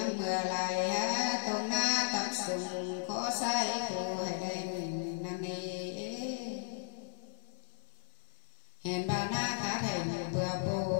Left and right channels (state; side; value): silent; right; 54 dB below the other